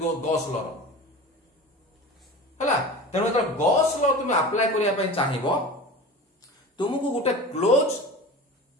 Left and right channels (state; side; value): normal; both; correlation 0.34